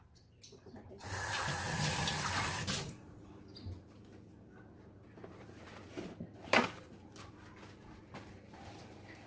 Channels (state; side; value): identical; both; correlation 1.00